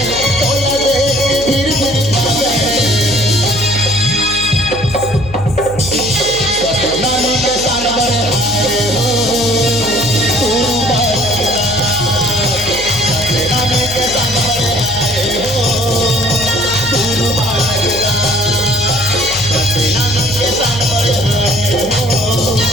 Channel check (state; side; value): noise; left; hum, 14 dB below the sound